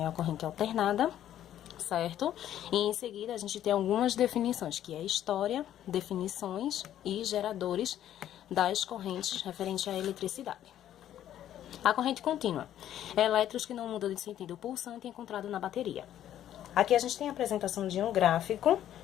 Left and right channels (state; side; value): quieter; right; 11.5 dB